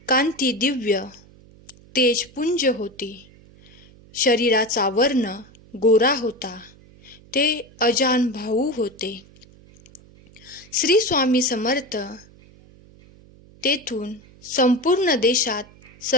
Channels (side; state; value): right; noise; hum, 25 dB below the sound